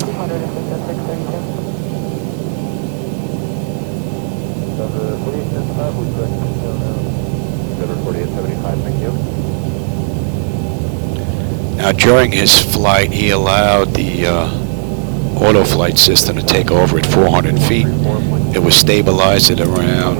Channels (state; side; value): silent; left; digital silence